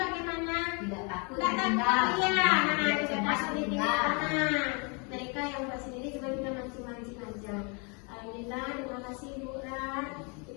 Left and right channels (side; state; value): right; quieter; 33.7 dB